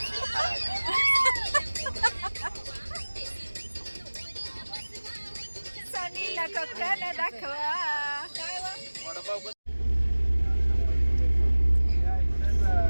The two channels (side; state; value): both; inverted; correlation -1.00